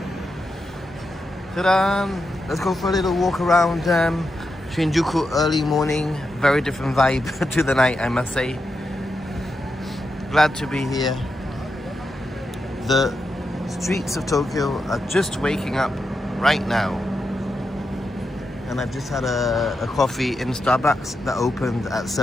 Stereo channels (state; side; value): normal; both; correlation 0.86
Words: Ta-da! Let's go for a little walk around Shinjuku early morning. Very different vibe to the night, I must say. Glad to be here. The streets of Tokyo are just waking up right now. And I've just had a coffee in Starbucks that opened at